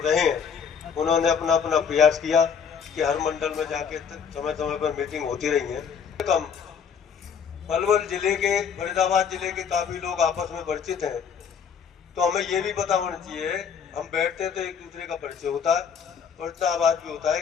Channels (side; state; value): right; quieter; 7.0 dB